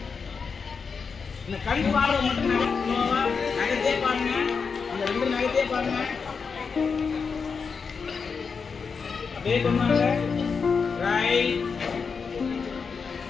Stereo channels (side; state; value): right; quieter; 5.5 dB